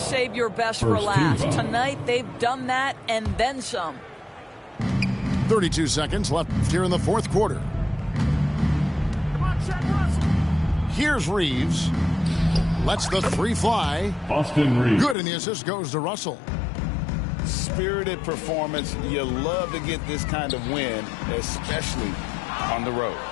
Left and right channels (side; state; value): right; drops out; at 15.2 s